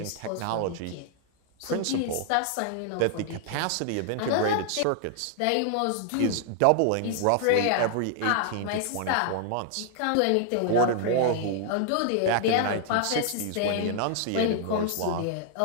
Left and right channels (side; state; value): both; different; correlation -0.01